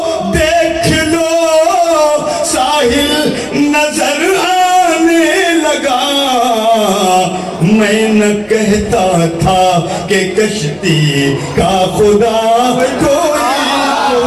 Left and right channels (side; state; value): both; identical; correlation 1.00